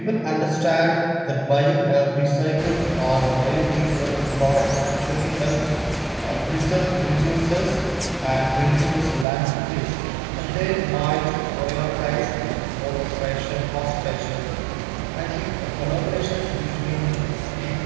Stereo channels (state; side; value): drops out; left; at 9.2 s